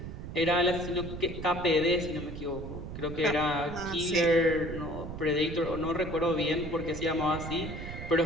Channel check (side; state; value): right; noise; rumble, 9 dB below the sound